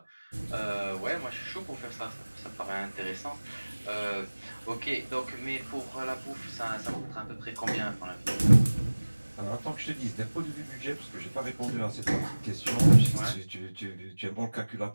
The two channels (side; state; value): both; inverted; correlation -1.00